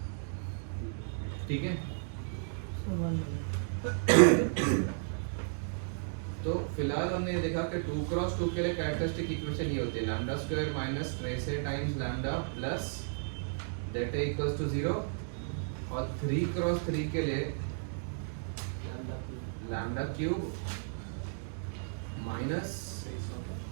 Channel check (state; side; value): silent; left; digital silence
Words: ठीक है। तो फिलहाल हमने ये देखा कि 2 क्रॉस 2 के लिए कैरेक्टरिस्टिक इक्वेशन ये होती है lambda square minus trace A times lambda plus det A equals to 0, और 3 क्रॉस 3 के लिए lambda cube minus